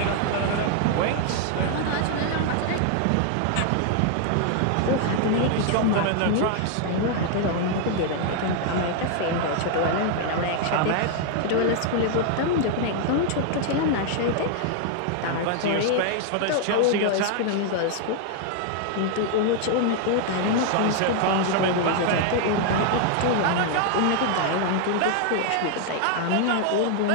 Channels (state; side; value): different; both; correlation 0.00